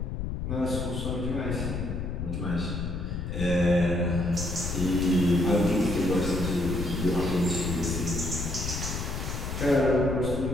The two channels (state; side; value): noise; left; rumble, 4 dB below the sound